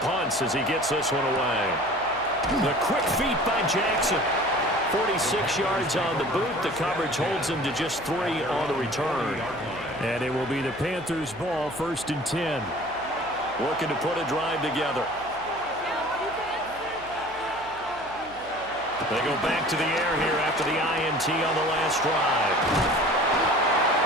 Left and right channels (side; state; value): right; noise; hum, 22 dB below the sound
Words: punts as he gets this one away. The quick feet by Jackson. 46 yards on the boot. The coverage holds him to just 3 on the return. And it will be the Panthers' ball, 1st and 10. Looking to put a drive together. They go back to the air here after the INT on the last drive.